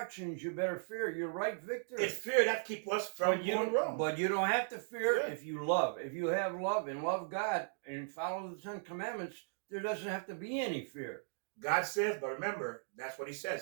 you better fear. You're right, Victor. It's fear that keeps us from going wrong. But you don't have to fear if you love. If you have love and love God and follow the 10 Commandments, there doesn't have to be any fear. God says, but remember, that's what He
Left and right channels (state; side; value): silent; left; digital silence